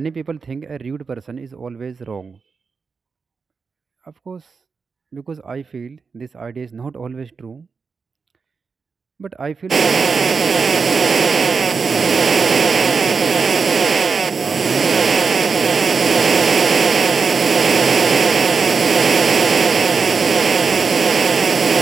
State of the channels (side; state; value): left; quieter; 5.1 dB